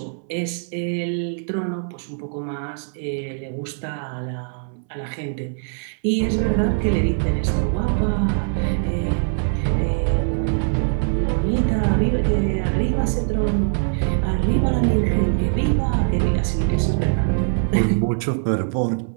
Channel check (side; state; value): left; silent; 64 dB below the other